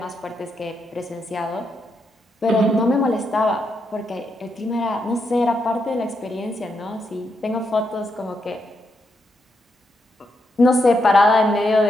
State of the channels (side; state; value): both; normal; correlation 0.82